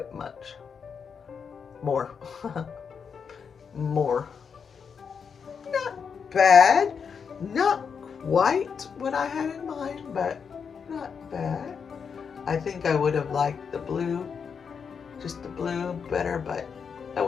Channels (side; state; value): right; quieter; 6.4 dB